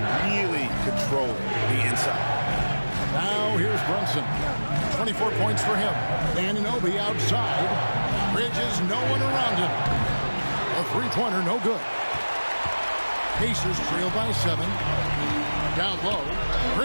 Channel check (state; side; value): inverted; both; correlation -1.00